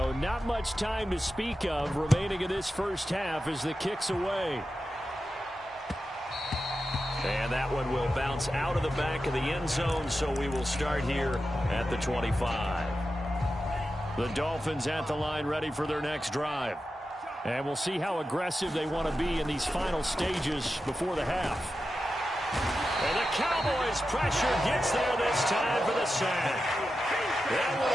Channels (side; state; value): both; normal; correlation 0.91